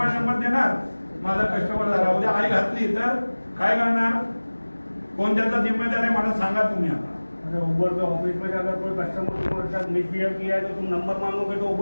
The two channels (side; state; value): both; inverted; correlation -1.00